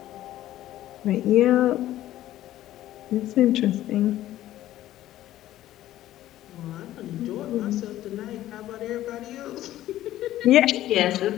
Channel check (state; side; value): quieter; right; 13.9 dB